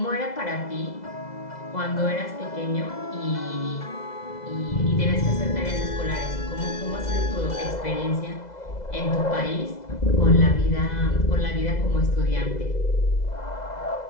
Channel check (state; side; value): late; right; 2.0 ms